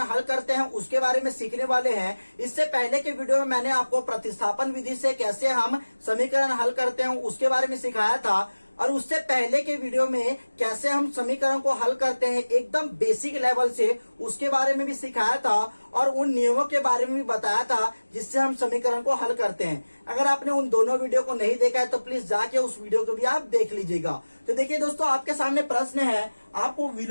हल करते हैं उसके बारे में सीखने वाले हैं। इससे पहले के वीडियो में मैंने आपको प्रतिस्थापन विधि से कैसे हम समीकरण हल करते हैं उसके बारे में सिखाया था, और उससे पहले के वीडियो में कैसे हम समीकरण को हल करते हैं एकदम बेसिक लेवल से उसके बारे में भी सिखाया था, और उन नियमों के बारे में भी बताया था जिससे हम समीकरण को हल करते हैं। अगर आपने उन दोनों वीडियो को नहीं देखा है तो प्लीज जाके उस वीडियो को भी आप देख लीजिएगा। तो देखिए दोस्तों, आपके सामने प्रश्न है, आपको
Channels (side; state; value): both; inverted; correlation -1.00